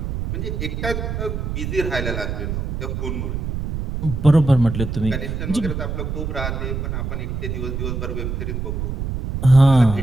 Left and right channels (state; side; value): noise; right; rumble, 3 dB below the sound